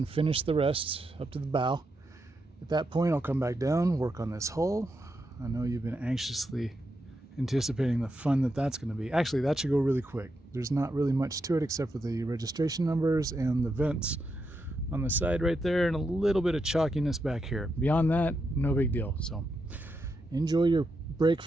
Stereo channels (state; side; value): normal; both; correlation 0.84